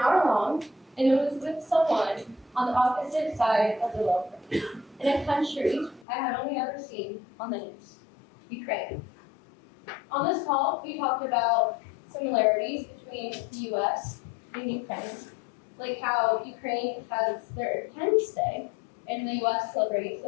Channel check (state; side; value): drops out; right; at 6.1 s